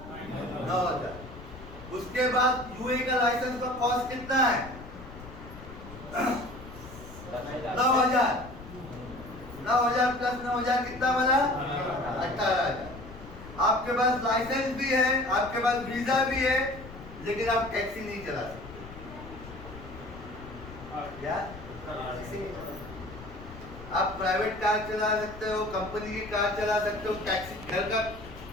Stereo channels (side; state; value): left; noise; rumble, 15 dB below the sound